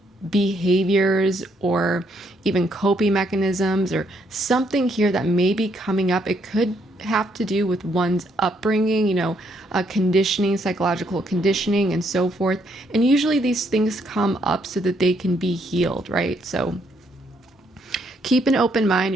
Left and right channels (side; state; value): both; normal; correlation 0.72